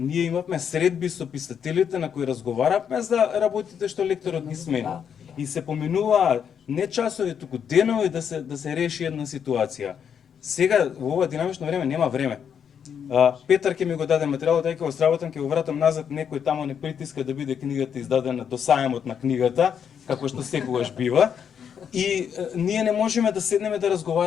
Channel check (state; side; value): quieter; right; 7.8 dB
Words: имавме средби со писателите на кои разговаравме за работите што лекторот ни смени. И се поминува не часови, туку денови да се реши една ситуација. Сега во ова динамично време нема време. Петар ќе ми го даде материјалот, ај ќе го сработам, ќе го вратам назад, некој тамо не притиска да биде книгата издадена до сајмот на книгата, како што секогаш бива. И ние не можеме да седнеме да